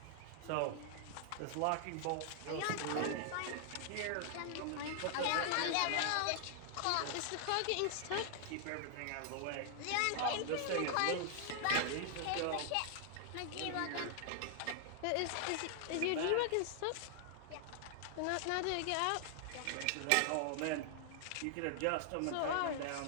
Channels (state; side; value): different; both; correlation 0.00